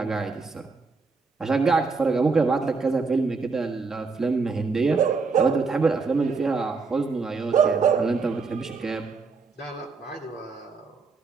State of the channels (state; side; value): quieter; left; 4.4 dB